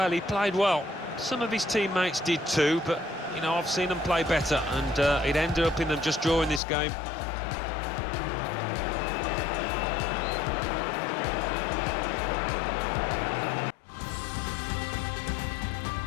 he played well. Some of his teammates did too, but, you know, I've seen them play better, and it ended up in them just drawing this game.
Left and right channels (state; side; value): drops out; right; at 6.6 s